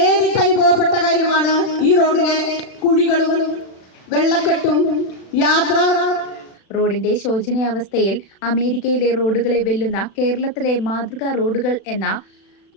അനുഭവപ്പെട്ട കാര്യമാണ് ഈ റോഡിലെ കുഴികളും വെള്ളക്കെട്ടും യാത്ര. റോഡിന്റെ ശോചനീയാവസ്ഥയിൽ അമേരിക്കയിലെ റോഡുകളെ വെല്ലുന്ന കേരളത്തിലെ മാതൃകാ റോഡുകൾ എന്ന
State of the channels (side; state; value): right; late; 36 ms